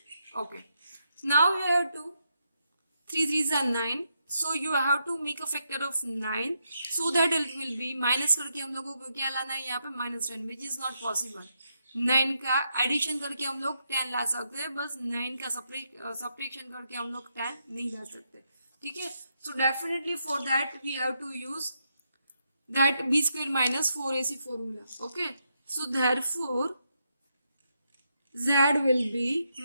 Okay, now we have to 3 3s are 9, so you have to make a factor of 9, so that it will be minus करके हम लोगों को क्या लाना है यहाँ पे -10, which is not possible. 9 का एडिशन करके हम लोग 10 ला सकते हैं, बस 9 का सब्ट्रैक्शन करके हम लोग 10 नहीं ला सकते. ठीक है, so definitely for that we have to use that b square minus 4ac formula. Okay, so therefore z will be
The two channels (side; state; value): both; inverted; correlation -0.80